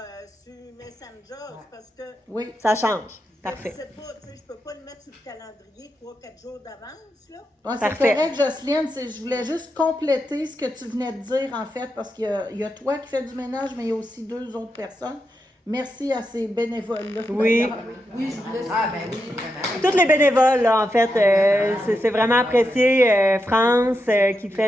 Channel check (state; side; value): normal; both; correlation 0.86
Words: sur Messenger parce que... Oui, ça change. Parfait. Je sais pas, tu sais, je peux pas le mettre sur le calendrier 3-4 jours d'avance, là. Ouais, c'est correct, Jocelyne. Je voulais juste compléter ce que tu venais de dire, en fait, parce qu'il y a toi qui fais du ménage, mais il y a aussi 2 autres personnes. Merci à ces bénévoles-là. Oui. Oui, je voulais... Ah, ben oui, vraiment. Tous les bénévoles, là, en fait, c'est vraiment apprécié. France qui fait